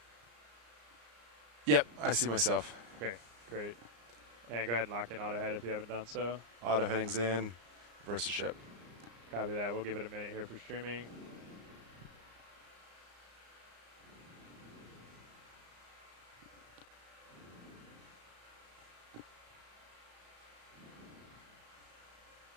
Yep, I see myself. okay, great. And go ahead and lock in auto head if you haven't done so. Auto heading's in. Versus ship. Copy that. We'll give it a minute here for streaming.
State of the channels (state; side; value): late; left; 34 ms